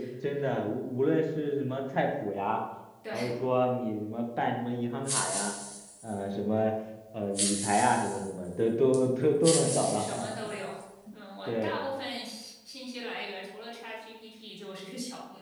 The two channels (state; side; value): identical; both; correlation 1.00